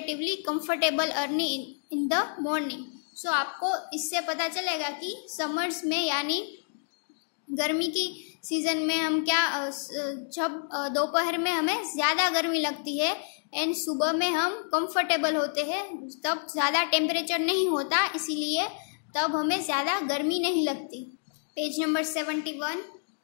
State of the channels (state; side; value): silent; right; digital silence